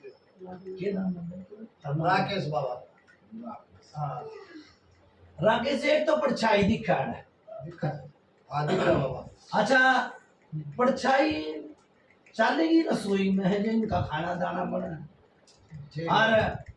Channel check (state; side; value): identical; both; correlation 1.00